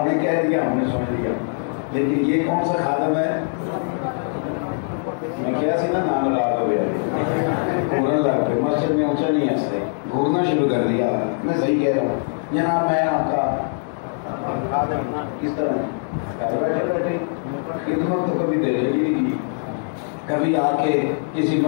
نے کہہ دیا ہم نے سن لیا، لیکن یہ کون سا خادم ہے؟ میں کیا سی نا نام رات ہو گیا، گھورن لگ پہ مسجد میں اونچا نہیں ہنستے، گھورنا شروع کر دیا۔ میں صحیح کہہ رہا ہوں جناب، میں آپ کا کس طرح گھر بیٹھے بیٹھے خدمت تو کبھی دے ہی نہیں کی، کبھی آ کے کسی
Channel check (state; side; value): silent; right; digital silence